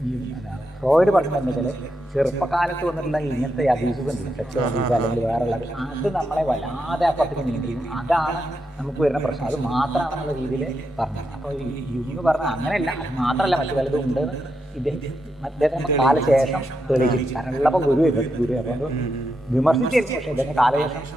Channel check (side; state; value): both; normal; correlation 0.84